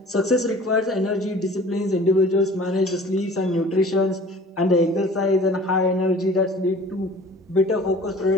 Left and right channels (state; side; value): normal; both; correlation 0.46